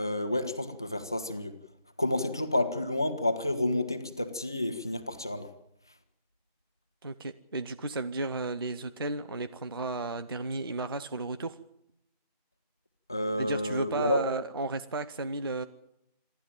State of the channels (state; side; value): inverted; both; correlation -0.69